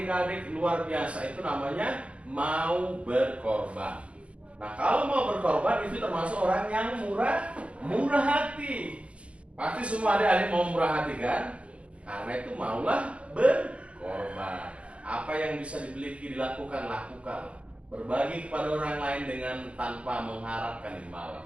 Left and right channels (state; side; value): late; left; 0.061 ms